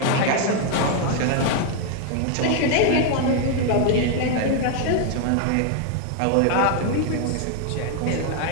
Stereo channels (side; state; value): both; different; correlation 0.01